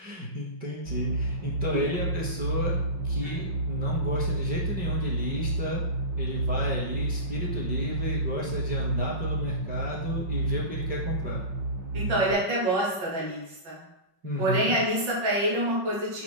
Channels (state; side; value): late; left; 5.4 ms